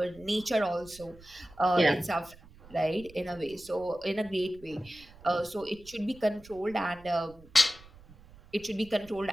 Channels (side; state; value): right; noise; rumble, 22 dB below the sound